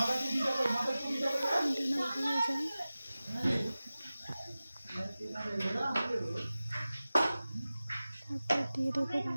এটা না পুড়ে যায়। তারপর দিয়ে দেবো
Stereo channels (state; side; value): inverted; both; correlation -0.96